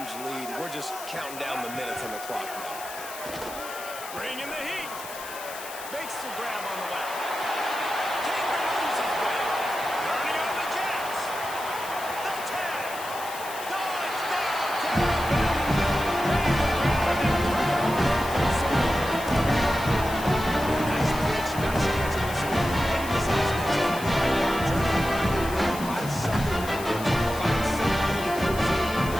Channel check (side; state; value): left; noise; hiss, 12 dB below the sound